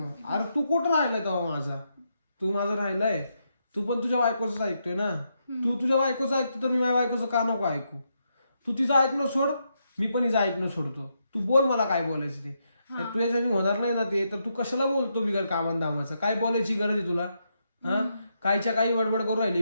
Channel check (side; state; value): both; inverted; correlation -0.81